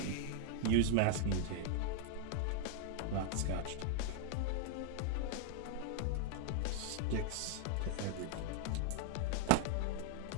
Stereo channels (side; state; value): both; different; correlation 0.00